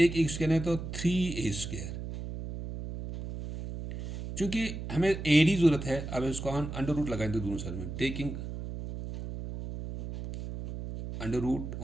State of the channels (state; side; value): noise; right; hum, 7 dB below the sound